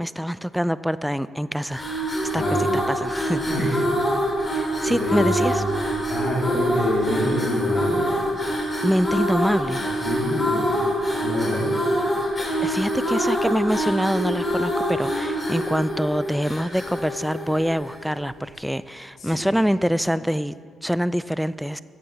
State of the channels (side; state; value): both; normal; correlation 0.86